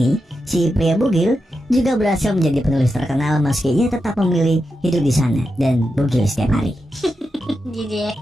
si pria bugil, juga berhasil menjadi penulis terkenal meski ia tetap memilih hidup di sana dan bugil setiap hari. Jadi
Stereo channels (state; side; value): normal; both; correlation 0.88